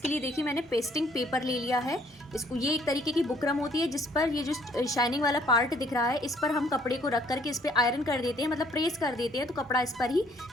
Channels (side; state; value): both; normal; correlation 0.62